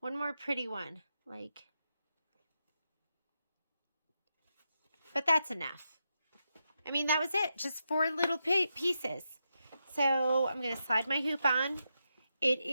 more pretty one, like, but that's enough. I mean, that was it. Just 4 little pieces. So I'm going to slide my hoop on. It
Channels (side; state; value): both; inverted; correlation -0.85